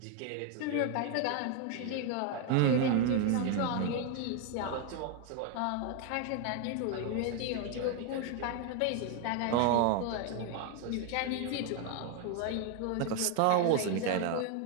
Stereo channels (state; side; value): different; both; correlation 0.01